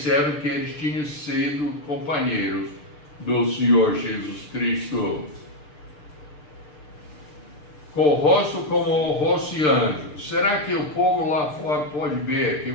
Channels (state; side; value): late; right; 6.8 ms